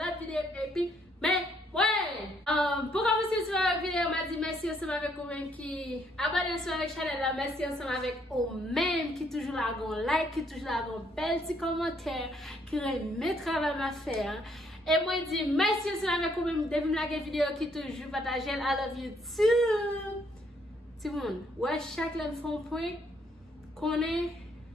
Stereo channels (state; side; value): normal; both; correlation 0.69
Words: vidéo et puis, mais ouais, pour commencer sur la vidéo, on m'a dit merci ensemble avec vous-même qui abonnez sur la chaîne là, merci ensemble avec vous-même qui toujours là, like, qui toujours là, bel petit commentaire, qui remet travail à faire. Et moi, je dis merci ensemble avec vous-même depuis la vidéo qui toujours partage. I love you too. Tout le monde, ouais, chaque fois qu'on point, qu'on est,